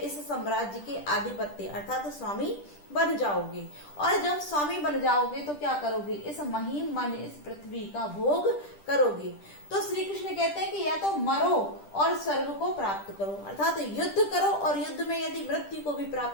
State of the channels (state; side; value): late; right; 10 ms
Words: साम्राज्य के आधिपत्य अर्थात स्वामी बन जाओगे, और जब स्वामी बन जाओगे तो क्या करोगे? इस महीम माने इस पृथ्वी का भोग करोगे। तो श्री कृष्ण कहते हैं कि या तो मरो और स्वर्ग को प्राप्त करो, अर्थात युद्ध करो और युद्ध में यदि मृत्यु को भी